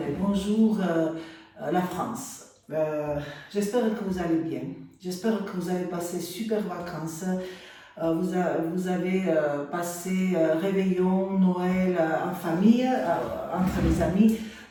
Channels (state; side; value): identical; both; correlation 1.00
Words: bonjour la France. J'espère que vous allez bien, j'espère que vous avez passé super vacances. Vous avez passé réveillon, Noël en famille, entre les amis,